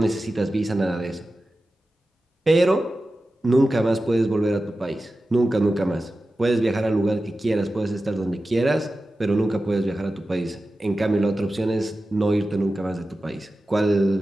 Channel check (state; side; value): normal; both; correlation 0.94